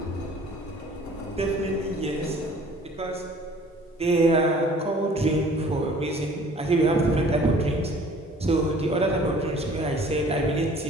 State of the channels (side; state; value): both; normal; correlation 0.52